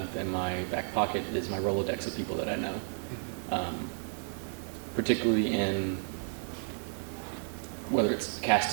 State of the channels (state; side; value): silent; left; 56 dB below the other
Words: in my back pocket is my Rolodex of people that I know. Particularly in whether it's